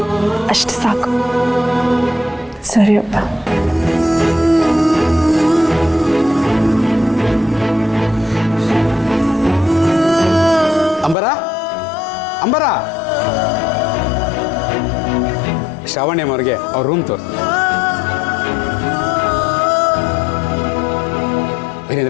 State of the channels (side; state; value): right; drops out; at 11.2 s